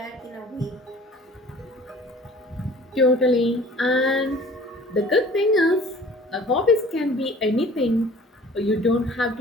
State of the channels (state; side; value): normal; both; correlation 0.48